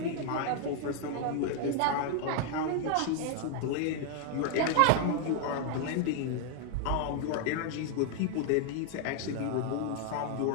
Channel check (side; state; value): both; different; correlation 0.00